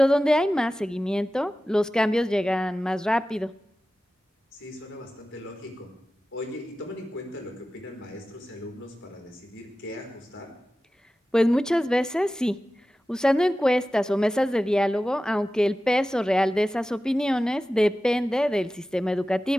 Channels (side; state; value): both; normal; correlation 0.95